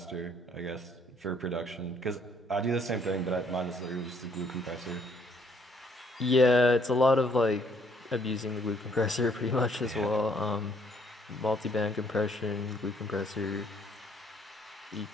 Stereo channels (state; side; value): normal; both; correlation 0.66